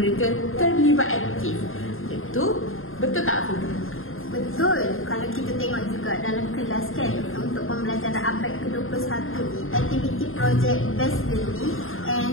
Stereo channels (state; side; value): late; right; 0.60 ms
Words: terlibat aktif. Itu betul tak, Afiqah? Betul. Kalau kita tengok juga dalam kelas kan, untuk pembelajaran abad ke-21 ni, aktiviti projek based learning